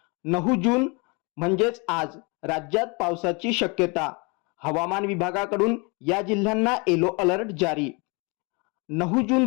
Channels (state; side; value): quieter; right; 30.1 dB